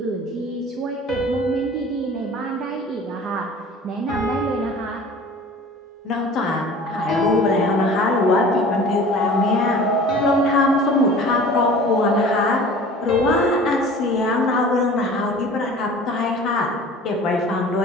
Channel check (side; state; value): both; normal; correlation 0.43